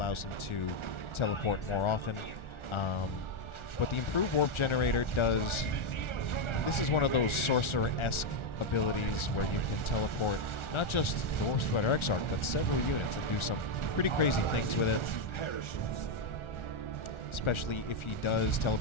him to teleport more often. But the improved warp generator does... This is one of those sorcerer-esque abilities where you can teleport not just the Warp Spider Exarch, but several units and do some pretty crazy things with it. Especially if he does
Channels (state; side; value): late; right; 1.4 ms